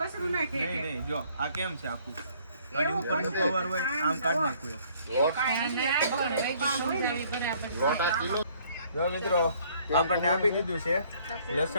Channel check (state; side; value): inverted; both; correlation -0.61